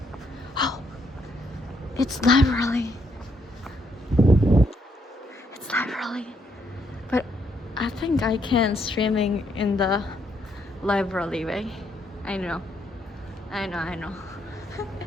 Oh, it's library. It's library. But I think I can streaming in the library way. I know.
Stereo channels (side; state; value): both; normal; correlation 0.73